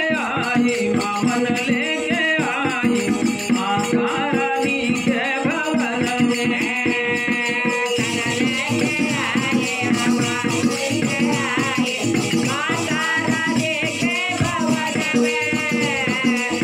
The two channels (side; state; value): both; identical; correlation 1.00